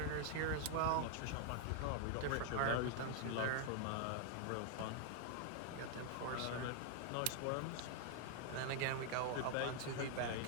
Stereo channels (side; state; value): both; different; correlation 0.00